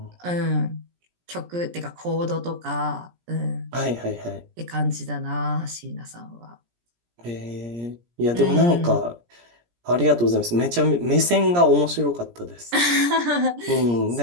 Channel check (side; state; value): left; late; 17 ms